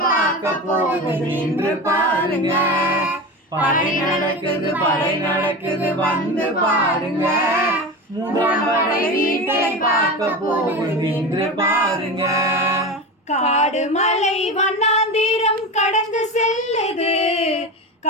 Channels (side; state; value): both; normal; correlation 0.25